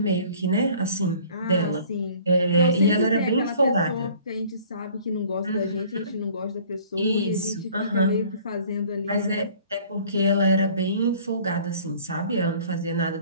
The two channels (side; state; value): both; inverted; correlation -0.52